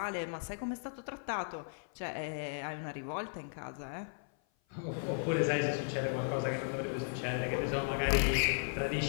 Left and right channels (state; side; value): silent; right; 54 dB below the other